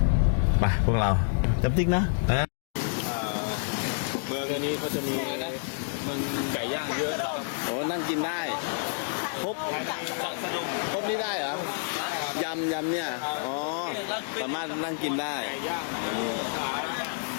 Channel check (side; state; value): right; silent; digital silence